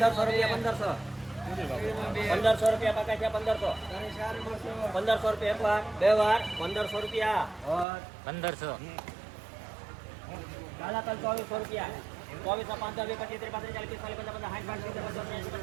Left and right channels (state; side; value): drops out; left; at 7.9 s